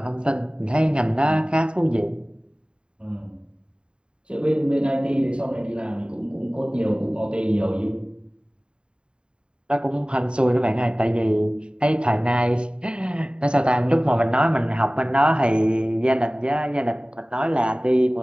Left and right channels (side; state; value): left; late; 0.051 ms